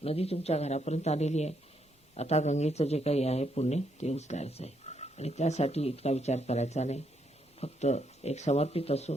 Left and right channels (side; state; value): both; normal; correlation 0.76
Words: नदी तुमच्या घरापर्यंत आलेली आहे. आता गंगेचं जे काही आहे पुण्य ते उचलायचं आहे आणि त्यासाठी इतका विचार करायचा नाही. फक्त एक समर्पित